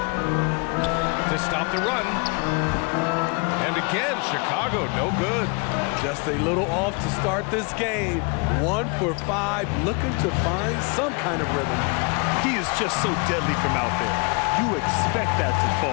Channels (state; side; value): quieter; right; 33.2 dB